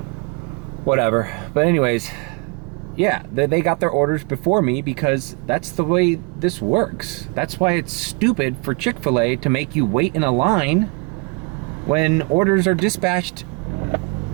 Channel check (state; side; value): quieter; left; 30.7 dB